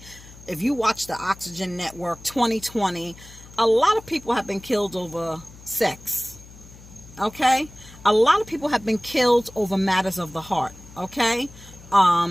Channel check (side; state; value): left; noise; hum, 20 dB below the sound